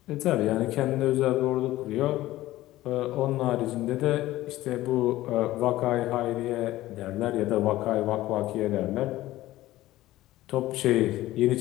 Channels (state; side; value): quieter; right; 16.1 dB